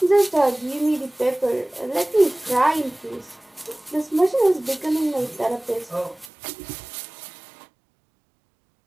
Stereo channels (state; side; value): drops out; left; at 6.3 s